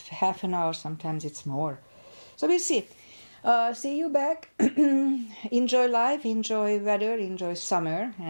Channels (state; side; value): inverted; both; correlation -1.00